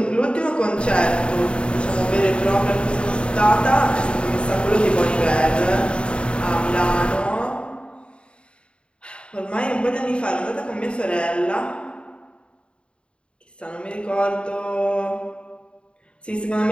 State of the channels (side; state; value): right; late; 0.055 ms